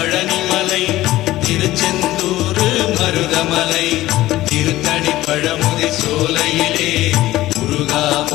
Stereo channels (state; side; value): quieter; right; 16.2 dB